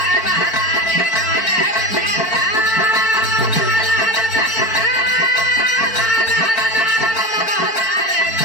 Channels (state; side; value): late; right; 4.5 ms